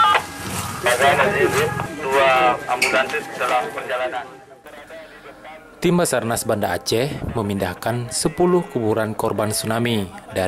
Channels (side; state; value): both; identical; correlation 1.00